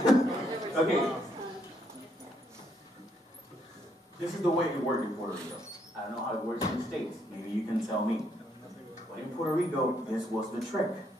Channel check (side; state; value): both; normal; correlation 0.73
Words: Okay. This is the way it works in Puerto Rico. I don't know how it works in the States. Maybe you can tell me. But in Puerto Rico, this was the trick.